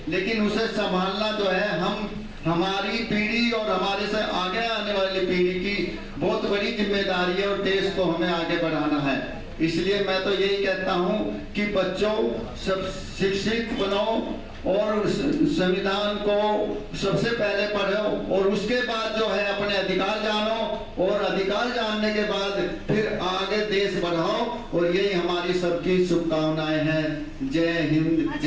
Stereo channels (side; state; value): both; identical; correlation 1.00